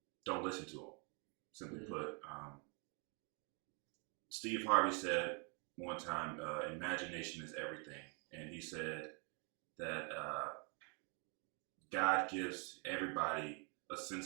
don't listen to them. Simply put, Steve Harvey said one time, imagination is everything, and he said that God gives everybody a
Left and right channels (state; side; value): quieter; left; 36.2 dB